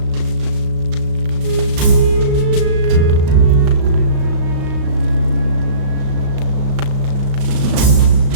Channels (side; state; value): left; late; 35 ms